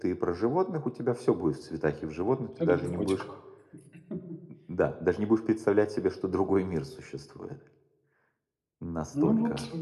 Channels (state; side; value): identical; both; correlation 1.00